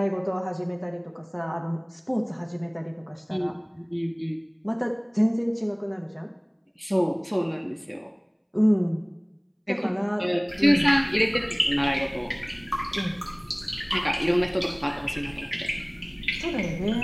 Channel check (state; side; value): identical; both; correlation 1.00